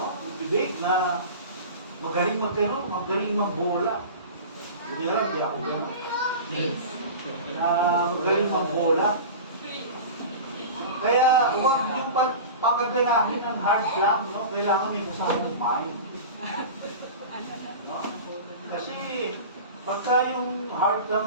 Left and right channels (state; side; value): inverted; both; correlation -0.33